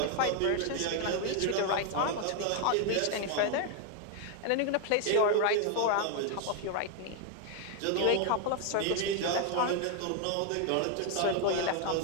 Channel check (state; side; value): different; both; correlation 0.00